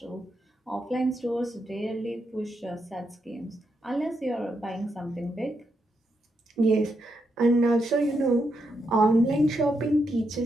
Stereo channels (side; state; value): both; normal; correlation 0.82